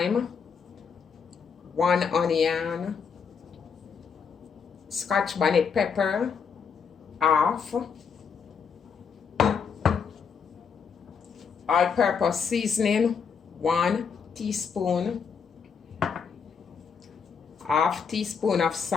1 onion, Scotch bonnet pepper, half, all-purpose seasoning, 1 teaspoon, half teaspoon of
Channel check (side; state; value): right; quieter; 6.2 dB